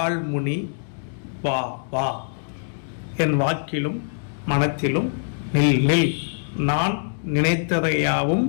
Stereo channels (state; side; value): silent; right; digital silence